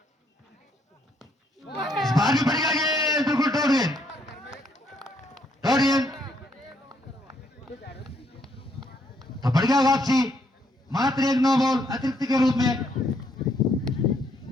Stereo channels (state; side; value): normal; both; correlation 0.71